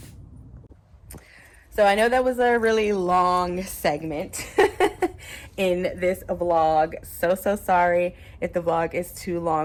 So I know that was a really long segment in this vlog. So sorry if the vlog is too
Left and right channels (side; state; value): both; identical; correlation 1.00